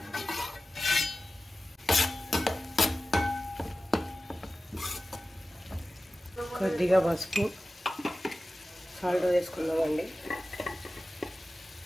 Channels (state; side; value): normal; both; correlation 0.95